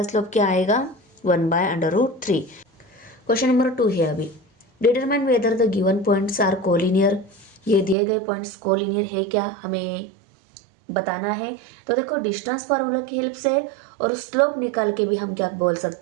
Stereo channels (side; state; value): left; drops out; at 8.0 s